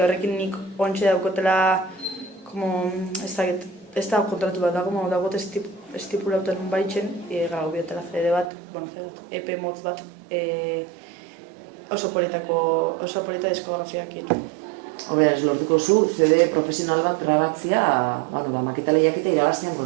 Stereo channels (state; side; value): drops out; left; at 8.5 s